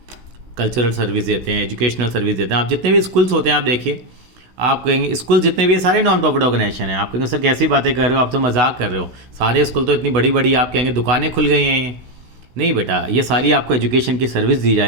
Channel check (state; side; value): late; left; 16 ms